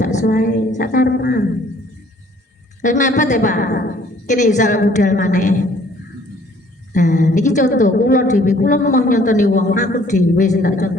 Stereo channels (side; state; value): both; normal; correlation 0.58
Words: ae, sak karepan. Wis mepet ya Pak. Kene iso budal maneh. Nah, niki contoh kula dhewe, kula mau nyontoni wong, aku dhewe sing tak